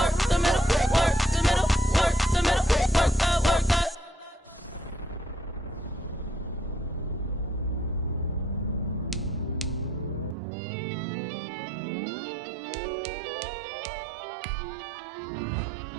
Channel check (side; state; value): left; drops out; at 10.4 s